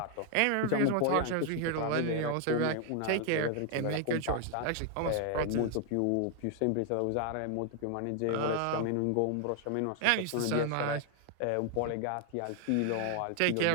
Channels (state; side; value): different; both; correlation 0.00